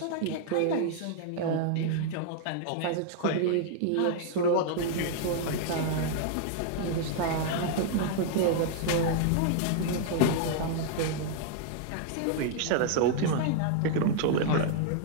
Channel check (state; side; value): different; both; correlation -0.01